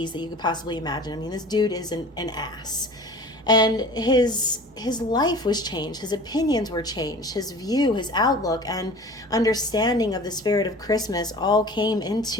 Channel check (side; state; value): both; normal; correlation 0.41